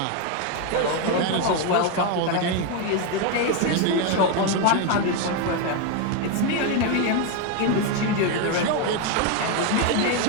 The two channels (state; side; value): different; both; correlation 0.02